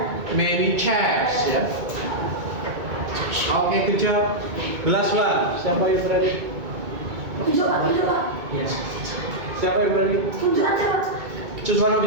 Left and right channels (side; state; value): left; late; 2.2 ms